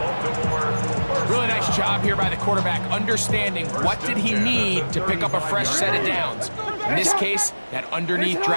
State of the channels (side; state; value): both; inverted; correlation -1.00